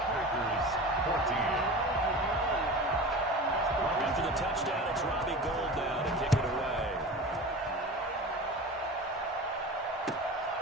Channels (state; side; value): normal; both; correlation 0.33